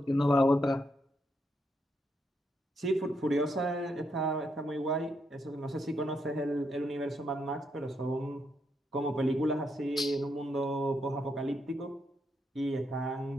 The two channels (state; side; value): normal; both; correlation 0.79